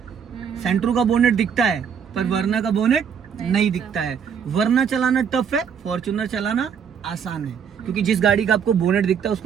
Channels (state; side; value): quieter; left; 7.3 dB